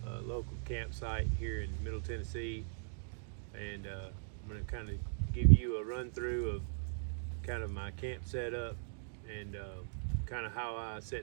local campsite here in Middle Tennessee, and I'm going to kind of give you a run through of kind of my camp setup and kind of how I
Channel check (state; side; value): silent; left; digital silence